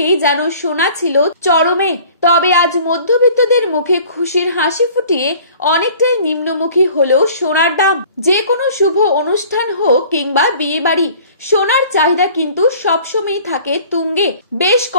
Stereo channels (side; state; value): both; inverted; correlation -0.49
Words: যেন সোনা ছিল চরমে। তবে আজ মধ্যবিত্তদের মুখে খুশির হাসি ফুটিয়ে অনেকটাই নিম্নমুখী হলেও সোনার দাম। যে কোনো শুভ অনুষ্ঠান হোক কিংবা বিয়ে বাড়ি, সোনার চাহিদা কিন্তু সবসময় থাকে তুঙ্গে। বেশ